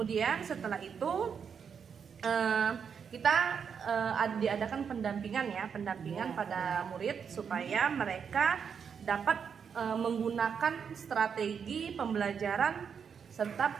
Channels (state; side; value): quieter; left; 6.8 dB